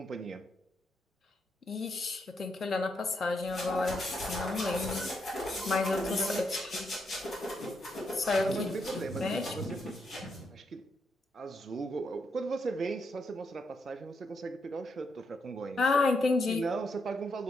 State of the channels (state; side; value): normal; both; correlation 0.80